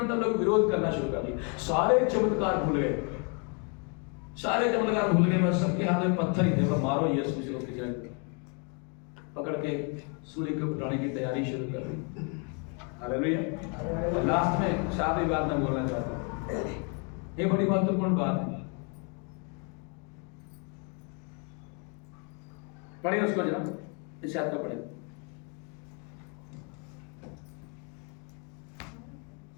तब लोग विरोध करना शुरू कर दिया। सारे चमत्कार भूल गए, बस सबके हाथ में पत्थर ही थे। वो मारो यीशु को पकड़ के सूली को उठाने की तैयारी शुरू कर दी। हालेलुया। लास्ट में सारी बात मैं बोलना चाहता हूं, ये बड़ी महत्वपूर्ण बात है। पढ़िए उसको जरा, इस याद का पढ़े।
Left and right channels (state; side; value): quieter; right; 37.0 dB